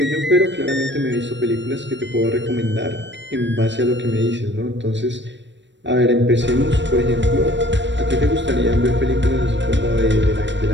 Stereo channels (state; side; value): late; left; 0.53 ms